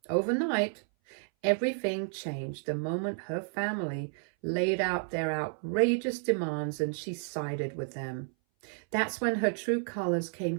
overnight, everything changed the moment her family laid out their outrageous demands and she sided with them. That's when her true colors came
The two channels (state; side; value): silent; left; 57 dB below the other